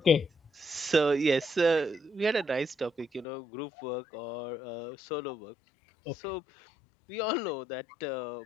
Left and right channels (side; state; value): right; drops out; at 3.2 s